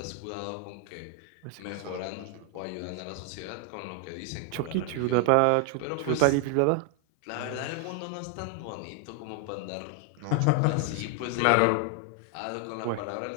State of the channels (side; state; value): both; different; correlation 0.00